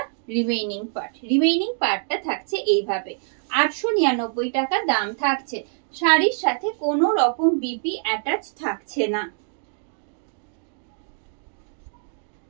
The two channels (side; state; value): left; silent; digital silence